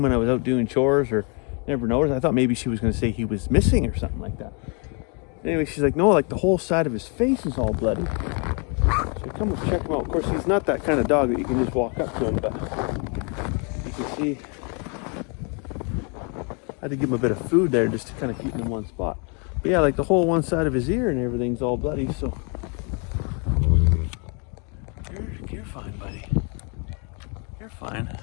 when I was out doing chores, or never noticed." I thought maybe she was going to say he was missing or something like that. Anyway, she's like, "No, like the whole side of his face is all bloody." So I come and check him out. Of course, he's not that kind of dog that you can just walk up to him, but you can see I had to give him a bit of food there just to kind of keep him in one spot. But yeah, like the whole one side of his ear and everything's all bloody, so you're fine, buddy. You're fine.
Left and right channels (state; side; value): quieter; right; 35.7 dB